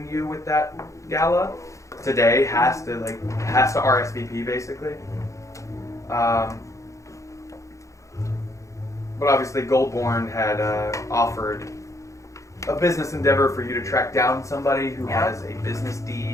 you with that gala today has to RSVP basically. But obviously Goldborn had offered a business endeavor for you to track down somebody who has a business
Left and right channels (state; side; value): late; right; 0.15 ms